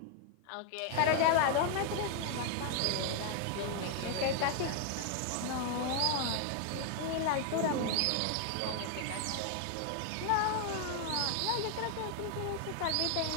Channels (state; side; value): different; both; correlation 0.00